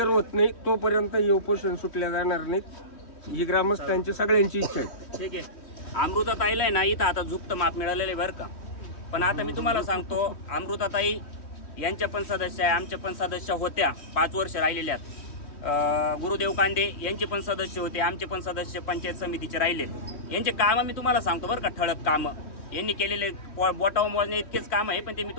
होत नाही तोपर्यंत हे उपोषण सुटल्या जाणार नाहीत, ही ग्रामस्थांची सगळ्यांची इच्छा आहे। ठीक आहे, अमृताताईला आहे ना इथं आता झुकतं माप मिळालेलं आहे बरं का। पण आता मी तुम्हाला सांगतो, अमृताताई यांच्या पण सदस्य आहे, आमच्या पण सदस्य होत्या, 5 वर्ष राहिलेल्या। गुरुदेव कांदे यांचे पण सदस्य होते, आमचे पण सदस्य पंचायत समितीचे राहिले। यांचे काम मी तुम्हाला सांगतो बरं का, ठळक काम यांनी केलेले बोटावर मोजणे इतकेच काम आहे, पण ते मी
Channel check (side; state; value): right; late; 3.1 ms